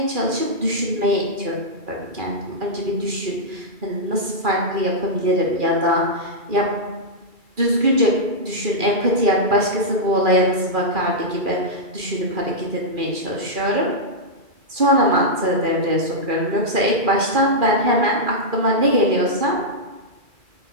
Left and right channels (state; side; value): late; left; 2.4 ms